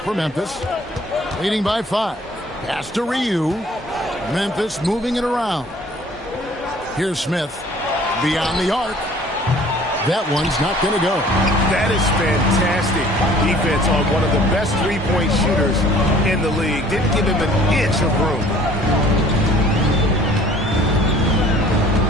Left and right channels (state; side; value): normal; both; correlation 0.53